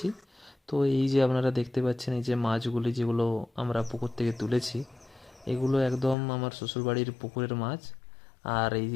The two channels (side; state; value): right; drops out; at 6.2 s